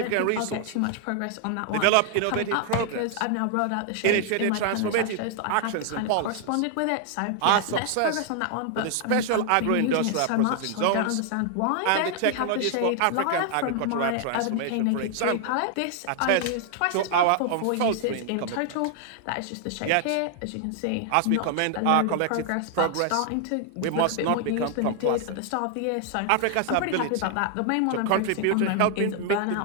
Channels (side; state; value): both; different; correlation 0.00